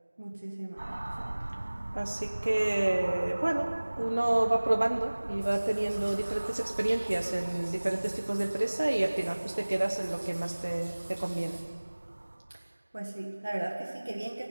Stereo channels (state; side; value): inverted; both; correlation -1.00